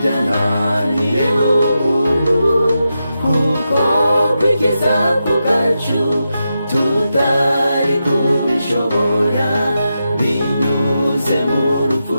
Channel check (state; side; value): inverted; both; correlation -0.88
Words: umuntu, kuko kwikiza ku bwacu tutari kubishobora, binyuze mu rupfu